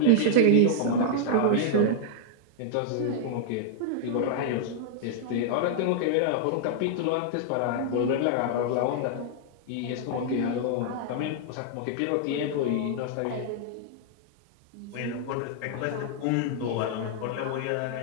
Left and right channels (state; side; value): different; both; correlation 0.00